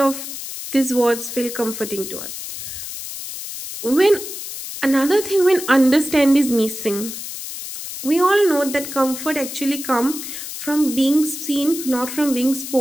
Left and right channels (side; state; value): left; noise; hiss, 9 dB below the sound